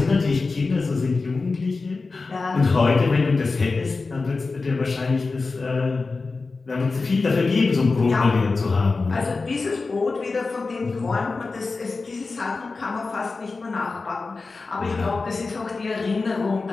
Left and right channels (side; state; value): right; quieter; 4.0 dB